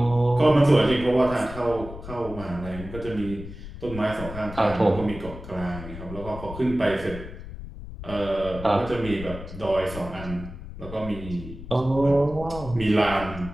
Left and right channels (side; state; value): left; noise; rumble, 12 dB below the sound